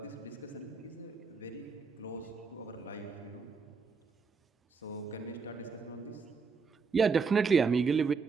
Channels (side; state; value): left; quieter; 5.1 dB